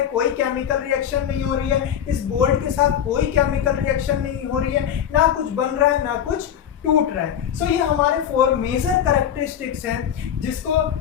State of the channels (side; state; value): right; quieter; 9.4 dB